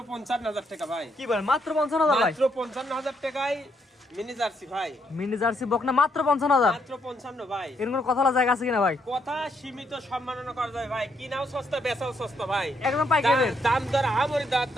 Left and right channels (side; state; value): both; normal; correlation 0.75